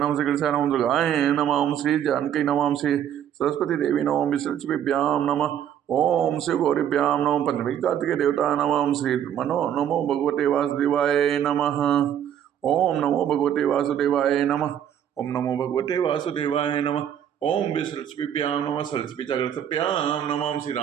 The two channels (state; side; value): quieter; left; 9.8 dB